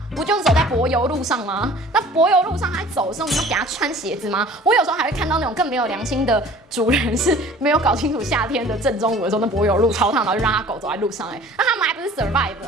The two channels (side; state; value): both; normal; correlation 0.47